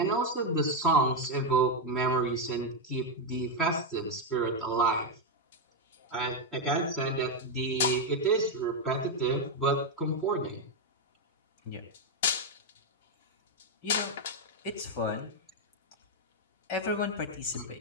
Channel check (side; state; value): both; normal; correlation 0.03